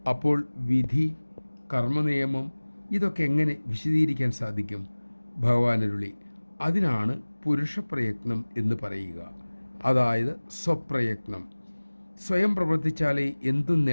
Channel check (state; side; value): inverted; both; correlation -1.00